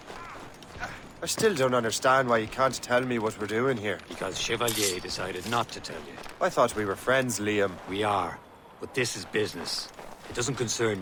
I still don't understand why you can't tell me what we're doing here. Because Chevalier decided not to tell you. I thought we were friends, Liam. We are. But this is business. It doesn't concern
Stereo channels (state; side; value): identical; both; correlation 1.00